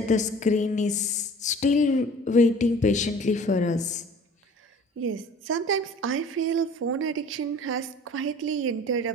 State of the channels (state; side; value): normal; both; correlation 0.47